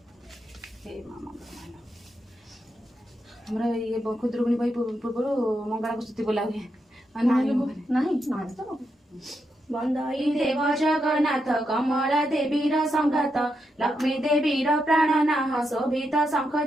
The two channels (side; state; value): both; normal; correlation 0.83